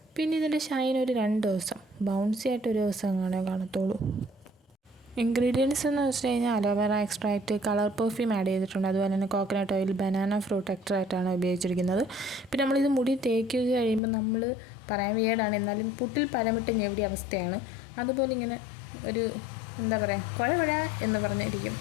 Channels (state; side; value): drops out; right; at 14.0 s